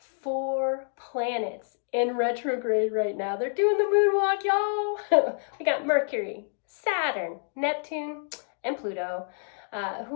planets in retrograde right now. They're doing the moonwalk, y'all. We got Mercury, Saturn, Neptune, and Pluto,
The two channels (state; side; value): silent; right; digital silence